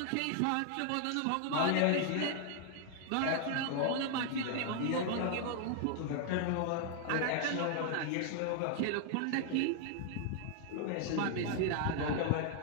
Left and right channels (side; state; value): both; different; correlation 0.00